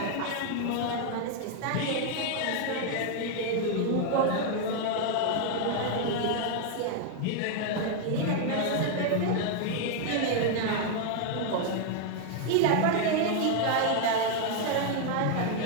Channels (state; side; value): different; both; correlation 0.00